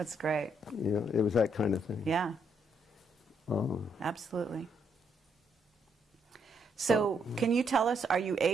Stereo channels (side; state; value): both; normal; correlation 0.74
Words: great. Yeah, it was that kind of thing. Yeah. Absolutely. So can you tell us, are you